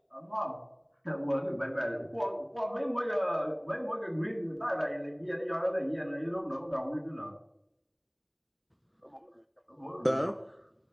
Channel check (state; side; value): identical; both; correlation 1.00